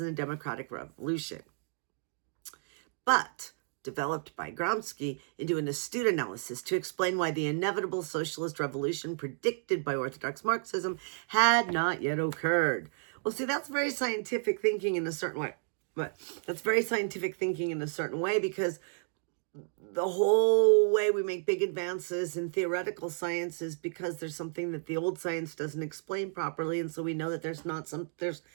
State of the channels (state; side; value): silent; left; digital silence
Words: the democratic revolution. But developed by Gramsci into an astute analysis to explain why the inevitable socialist revolution predicted by orthodox Marxism had not yet occurred. Well, see, that's very scientific thinking in a certain way. But that's very scientific thinking in a certain way, because the whole way we make big advances in theoretical science is because there's something that the old science doesn't explain properly. And so we know that